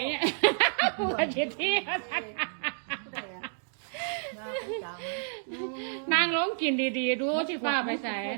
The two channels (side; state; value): left; silent; digital silence